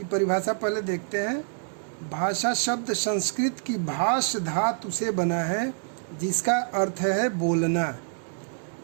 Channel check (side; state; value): left; silent; digital silence